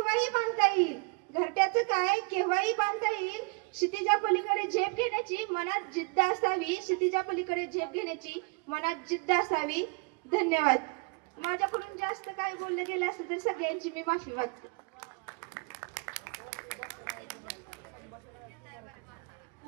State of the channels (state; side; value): quieter; left; 31.9 dB